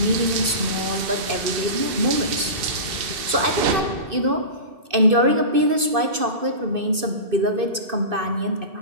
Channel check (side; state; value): left; late; 2.5 ms